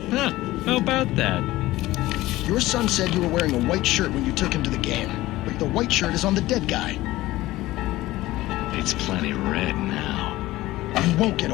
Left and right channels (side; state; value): right; quieter; 17.4 dB